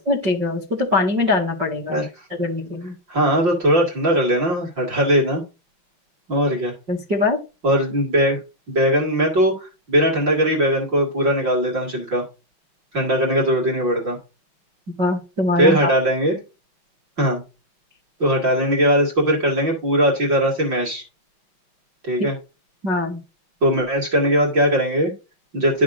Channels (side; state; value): left; late; 5.7 ms